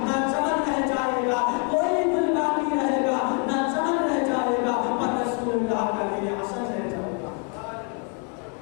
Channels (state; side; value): quieter; right; 38.7 dB